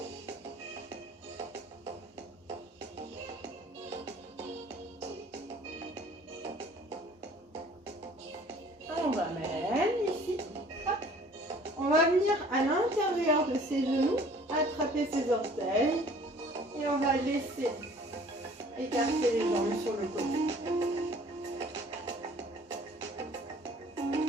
On va mettre ici. Hop. On va venir à l'intérieur de ses genoux, attraper ses orteils et on va laisser écarter les jambes sur le côté.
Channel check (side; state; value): both; normal; correlation 0.52